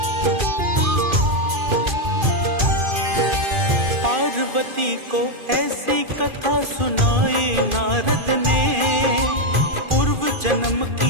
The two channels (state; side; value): late; left; 2.4 ms